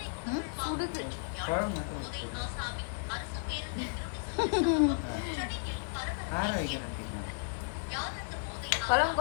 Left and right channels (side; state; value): right; silent; digital silence